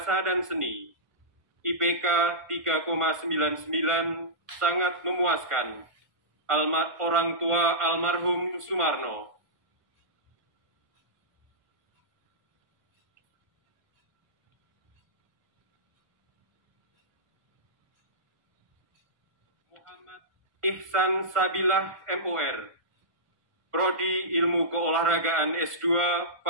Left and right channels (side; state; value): left; late; 1.5 ms